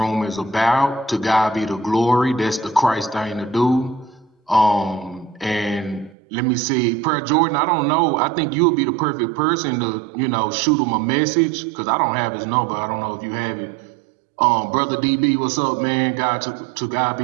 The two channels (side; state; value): left; drops out; at 6.2 s